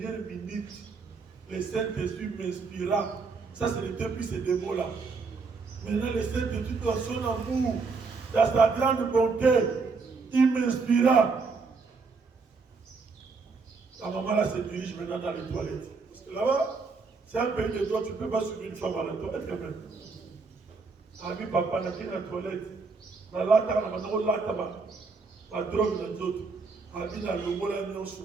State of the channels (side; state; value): left; quieter; 4.4 dB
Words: minute, le Saint-Esprit m'inspira. Ça, c'est depuis ces deux mots-là. Maintenant, le Saint-Esprit, dans son amour, dans sa grande bonté, il m'inspira. La maman là se dirige maintenant dans les toilettes. Parce que là-bas, c'est un pays de droit, tu ne peux pas suivre une femme à la toilette quand même. Ami papa, n'a qu'une toilette. Dans la table, on a la drogue dans les autres. Ami dans le mot là,